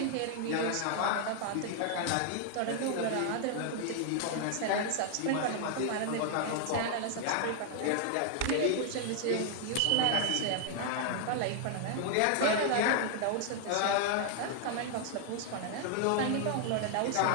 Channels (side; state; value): both; different; correlation 0.00